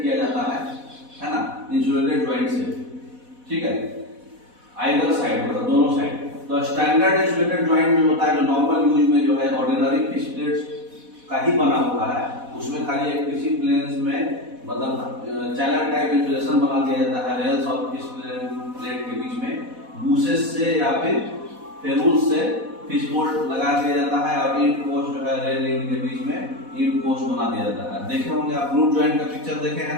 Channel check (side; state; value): left; late; 4.1 ms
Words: किया जाता है ना, इंसुलेटेड जॉइंट से, ठीक है। आइदर साइड मतलब दोनों साइड। तो स्टैंडर्ड इंसुलेटेड जॉइंट जो होता है, जो नॉर्मल यूज में जो है ऑर्डिनरी फिक्स्ड प्लेट्स का ही बना हुआ है, उसमें खाली एक किसी प्लेन्स में मतलब चैनल टाइप इंसुलेशन बना दिया जाता है रेल्स और फिक्स्ड प्लेट के बीच में बूसेस से या फिर फेरूल्स से फिश बोल्ट लगा दिया जाता है और इंड पोस्ट जो है रेल रिंग के बीच में इंड पोस्ट बना दिया जाता है। देखे होंगे आप ग्लूट जॉइंट का पिक्चर देखे